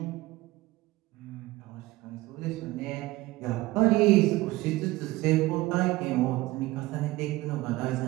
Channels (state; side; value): quieter; left; 19.2 dB